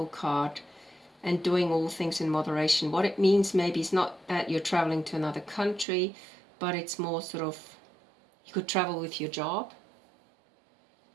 card and doing all things in moderation. What it means maybe is not that you're traveling to another country, but it's more sort of, you could travel with your job,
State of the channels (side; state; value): left; drops out; at 5.9 s